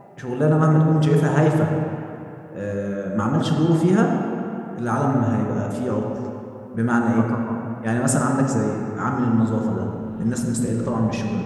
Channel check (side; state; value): both; identical; correlation 1.00